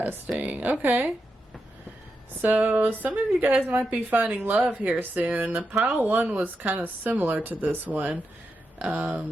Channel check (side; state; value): both; normal; correlation 0.87